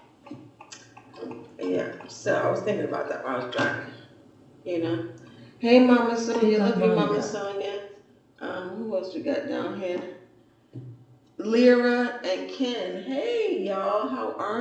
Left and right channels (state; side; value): identical; both; correlation 1.00